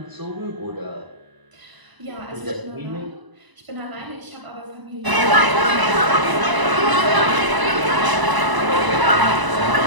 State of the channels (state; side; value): late; left; 1.0 ms